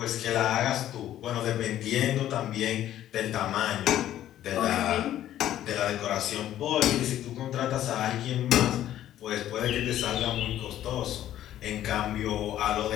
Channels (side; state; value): right; quieter; 12.3 dB